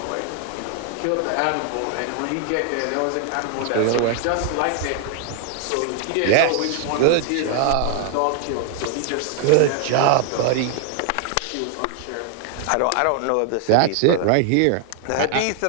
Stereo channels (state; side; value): different; both; correlation 0.00